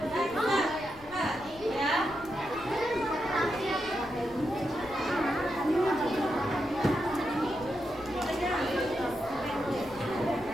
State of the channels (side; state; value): left; noise; rumble, 21 dB below the sound